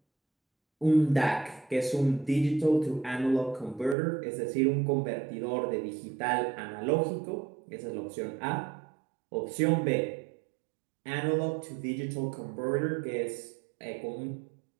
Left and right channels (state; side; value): drops out; left; at 4.0 s